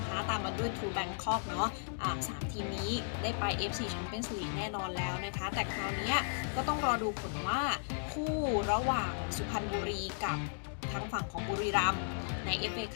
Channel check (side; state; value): right; silent; digital silence